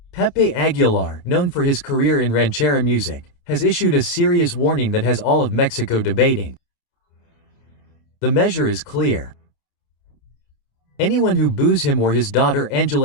Pepe Aguilar, known for his career in ranchera music, has issued a serious warning that has all of Mexico debating. The measure is clear. Anyone who boos him or his daughter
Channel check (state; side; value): late; right; 29 ms